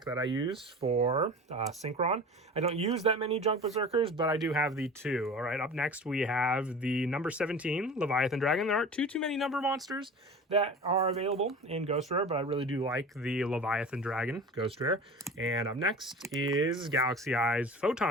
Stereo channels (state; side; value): normal; both; correlation 0.36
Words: that I use for Synchron. I don't use that many Junk Berserkers, but I do have the 2. All right, up next we have the number 17 Leviathan Dragon. There aren't too many number monsters that are available in Ghost Rare, but I really do like the Leviathan Dragon Ghost Rare. And up next is Galaxy Eyes